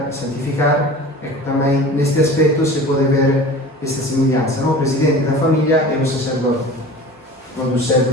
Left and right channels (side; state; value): both; normal; correlation 0.38